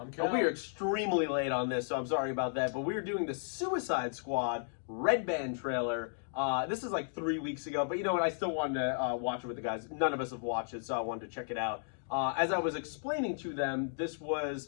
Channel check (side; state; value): right; silent; digital silence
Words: Cal. We are extremely late on this, so I'm sorry about that. But we are doing the Suicide Squad Red Band trailer. This is like 3 weeks ago, but you know what? I still wanted to watch it with the guys. None of us have watched it, so I wanted to check it out. As I was explaining to them, it's